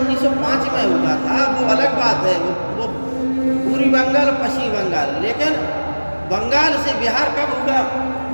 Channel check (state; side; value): inverted; both; correlation -1.00